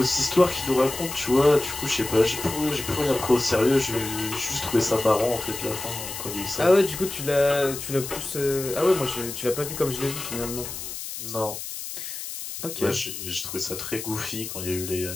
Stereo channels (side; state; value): left; noise; hiss, 8 dB below the sound